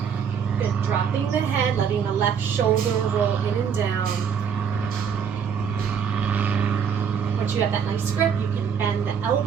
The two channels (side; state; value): left; quieter; 7.2 dB